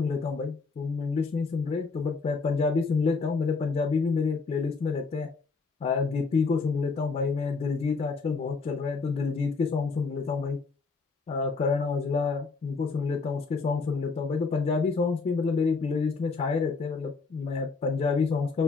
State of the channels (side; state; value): right; quieter; 4.4 dB